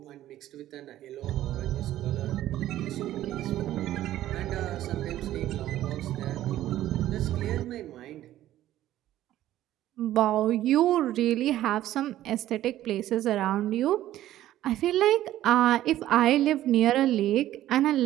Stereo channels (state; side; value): quieter; left; 13.5 dB